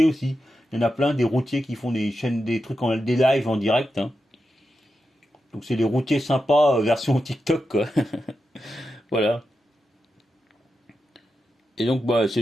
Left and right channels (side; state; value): both; normal; correlation 0.89